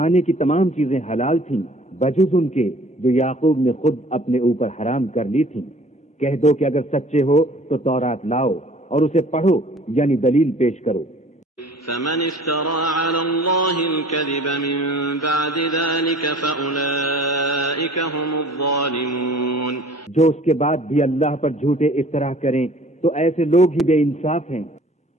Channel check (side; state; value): both; normal; correlation 0.50